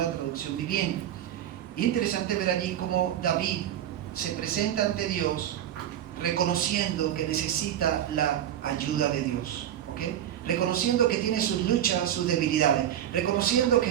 Traducción Viviente. Y es interesante ver allí cómo David se presenta ante Dios reconociendo que necesita la ayuda de Dios, ¿okay? Reconociendo que tiene sus luchas, sus debilidades, reconociendo que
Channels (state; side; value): quieter; left; 10.9 dB